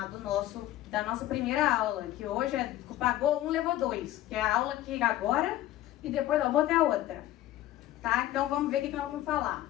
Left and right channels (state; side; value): quieter; right; 14.2 dB